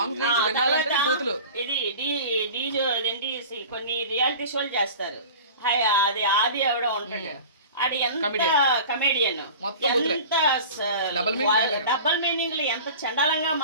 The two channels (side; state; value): both; inverted; correlation -0.38